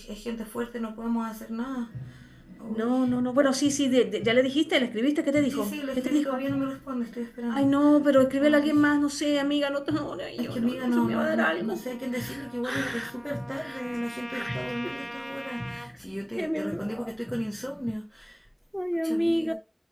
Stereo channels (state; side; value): identical; both; correlation 1.00